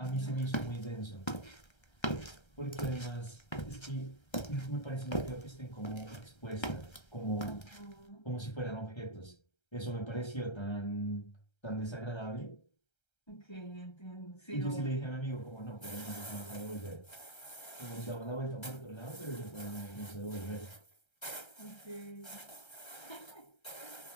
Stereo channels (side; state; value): right; late; 1.3 ms